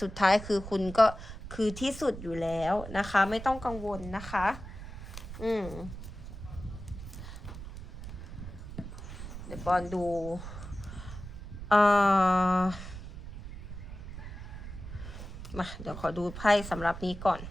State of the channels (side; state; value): right; noise; rumble, 11 dB below the sound